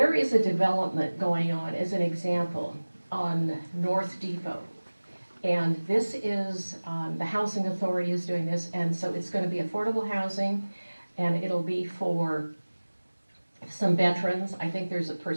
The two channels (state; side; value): inverted; both; correlation -1.00